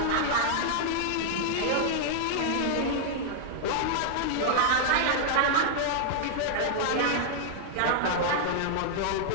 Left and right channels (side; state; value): both; different; correlation -0.01